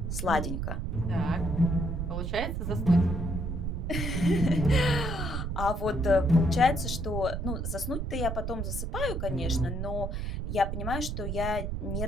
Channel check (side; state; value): right; noise; rumble, 3 dB below the sound